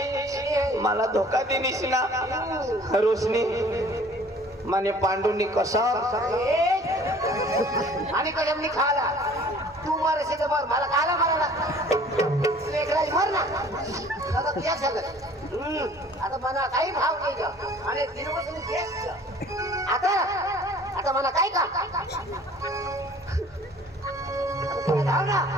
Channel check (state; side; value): normal; both; correlation 0.51